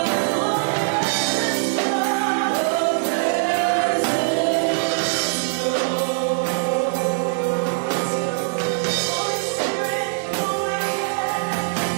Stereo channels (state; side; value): silent; left; digital silence